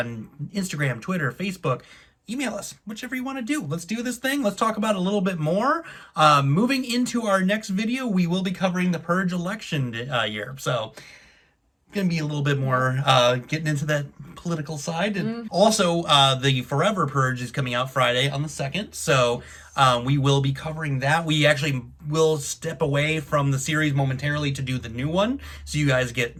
Twitter, Facebook, email us, whichever you want to do. Let's do this thing. Let's talk about it a little bit more. Moving into our next video, we will be covering the Purge election year. So going to be a little bit more getting into that political side. And also, the Forever Purge is coming out Friday on the 2nd. So we will be covering that. We actually will step away from the series momentarily to do the new one. So you guys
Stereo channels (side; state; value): both; identical; correlation 1.00